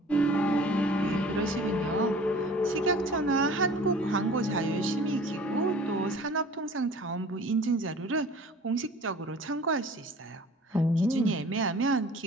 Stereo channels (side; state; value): both; normal; correlation 0.47